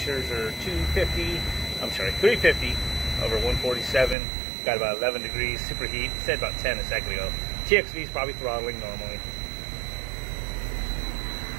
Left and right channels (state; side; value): drops out; left; at 4.2 s